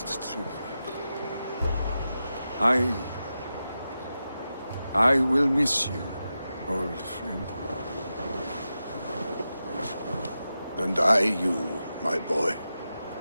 Tryggvi. I will miss you, old friend. And I you, my boy.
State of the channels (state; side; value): inverted; both; correlation -0.91